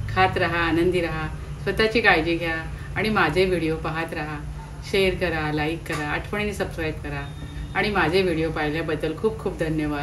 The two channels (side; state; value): both; identical; correlation 1.00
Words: राहा, आनंदी राहा, स्वतःची काळजी घ्या आणि माझे व्हिडिओ पाहत राहा. शेअर करा, लाईक करा, आठवणीने सबस्क्राईब करा आणि माझे व्हिडिओ पाहिल्याबद्दल खूप खूप